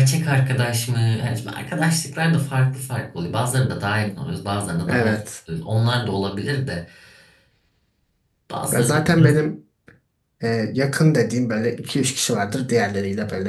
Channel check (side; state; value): both; identical; correlation 1.00